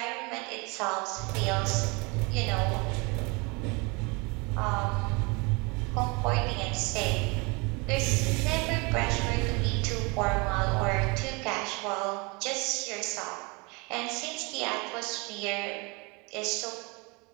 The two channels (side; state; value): left; quieter; 28.5 dB